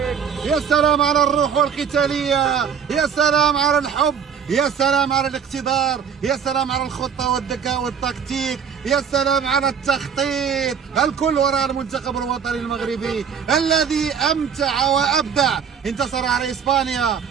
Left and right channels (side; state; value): left; quieter; 7.3 dB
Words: يا سلام على الروح والقتالية، يا سلام على الحب، يا سلام على الاقتدار، يا سلام على الخطة والذكاء والتكتيك، يا سلام على التخطيط. الكل وراء المنتخب الوطني المغربي الذي أمتع وأبدع. انتصر على إسبانيا